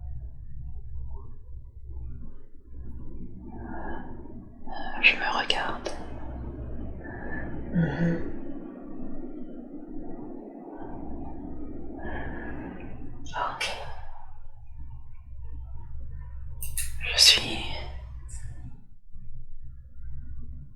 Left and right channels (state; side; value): identical; both; correlation 1.00